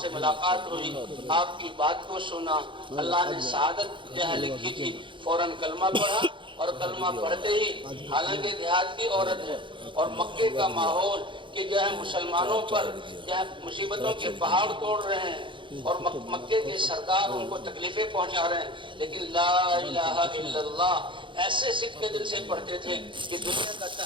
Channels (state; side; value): late; left; 0.24 ms